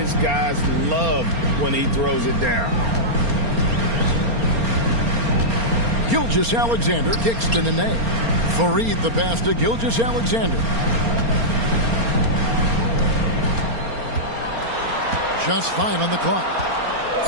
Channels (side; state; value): left; late; 4.3 ms